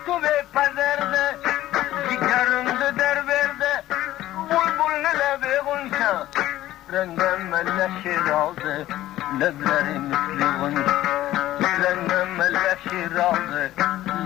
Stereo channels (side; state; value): right; quieter; 14.7 dB